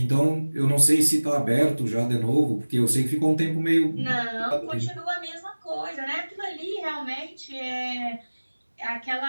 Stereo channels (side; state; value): both; inverted; correlation -1.00